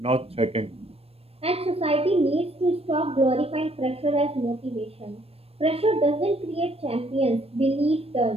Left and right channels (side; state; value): left; late; 0.28 ms